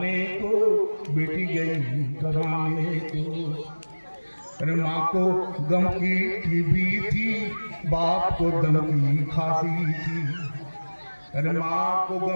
को, बेटी गई कमाने को। अरे माँ को गम की टीबी थी, बाप को दम की खांसी थी। अरे माँ को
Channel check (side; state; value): both; inverted; correlation -1.00